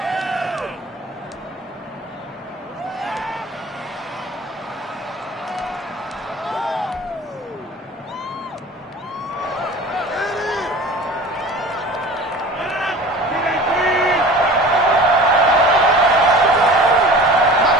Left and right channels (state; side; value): normal; both; correlation 0.40